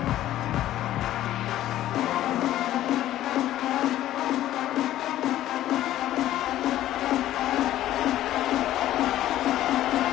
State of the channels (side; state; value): right; quieter; 13.4 dB